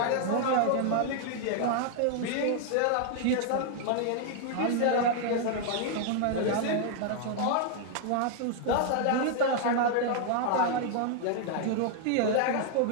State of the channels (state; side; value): different; both; correlation -0.01